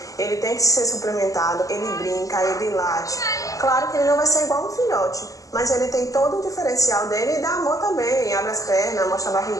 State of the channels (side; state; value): right; late; 0.16 ms